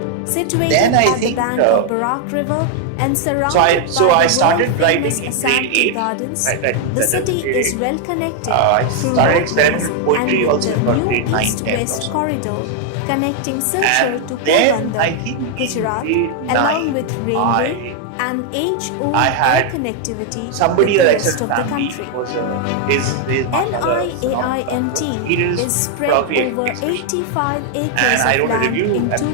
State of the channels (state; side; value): different; both; correlation 0.00